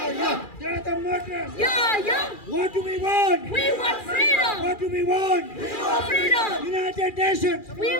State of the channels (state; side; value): late; right; 2.4 ms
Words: are the murderers. Yeah, yeah. What do we want? We want freedom. What do we want? We want freedom. United Nations. We